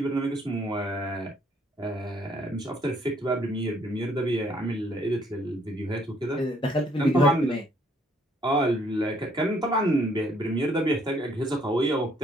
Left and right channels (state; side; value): normal; both; correlation 0.65